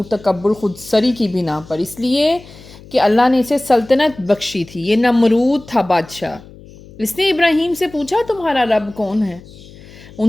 تکبر خود سری کی بنا پر، اس لیے کہ اللہ نے اسے سلطنت بخشی تھی۔ یہ نمرود تھا بادشاہ۔ اس نے ابراہیم سے پوچھا تمہارا رب کون ہے؟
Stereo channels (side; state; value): left; noise; hum, 20 dB below the sound